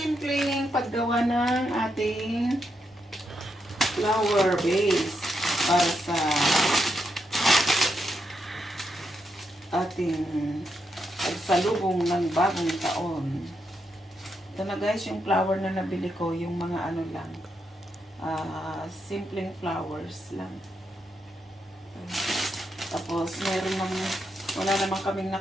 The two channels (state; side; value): normal; both; correlation 0.82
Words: paggawa ng ating flower base para sa ating pagsalubong ng bagong taon. Ito na guys, yung flower na nabili ko, yung mga ano lang, simpleng flowers lang. Tapos meron ng, wala naman kaming